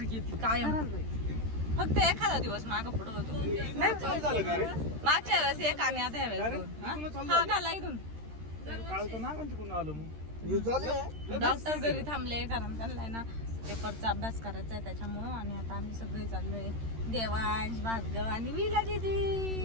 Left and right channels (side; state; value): left; late; 13 ms